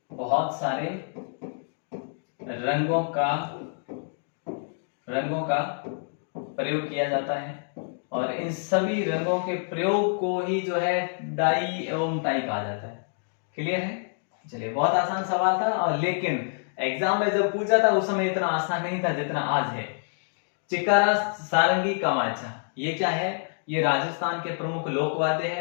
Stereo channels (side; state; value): right; silent; digital silence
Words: बहुत सारे रंगों का प्रयोग किया जाता है, और इन सभी रंगों के प्रयोग को ही जो है डाई एवं टाई कहा जाता है। क्लियर है? चलिए, बहुत आसान सवाल था, और लेकिन एग्जाम में जब पूछा था उस समय इतना आसान नहीं था जितना आज है। चिकारा, सारंगी, कमाचा, ये क्या है? ये राजस्थान के प्रमुख लोकवाद्य